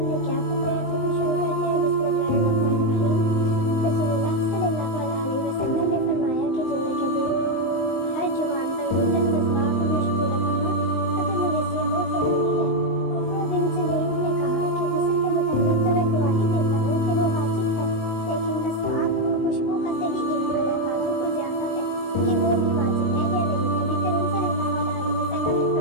ने क्या फरमाया था, तो शुरू करते हैं। बिस्मिल्लाहिर्रहमानिर्रहीम। रसूलुल्लाह सल्लल्लाहु अलैहि वसल्लम ने फरमाया कि जुम्मे के दिन हर जुबान पर गुस्ल, मसवाक और खुशबू लगाना अगर मेरे से हो ज़रूरी है। उम्मे बिन सलीम ने कहा कि गुस्ल के मुताबिक तो मैं गवाही देता हूँ कि वो वाजिब है, लेकिन मसवाक और खुशबू का सही इल्म अल्लाह ताला को ज़्यादा है कि वो भी वाजिब है या नहीं। नबी करीम सल्लल्लाहु अलैहि वसल्लम ने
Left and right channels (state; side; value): late; right; 19 ms